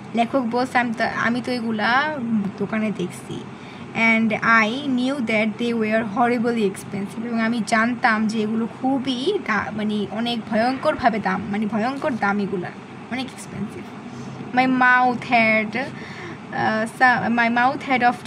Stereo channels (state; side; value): identical; both; correlation 1.00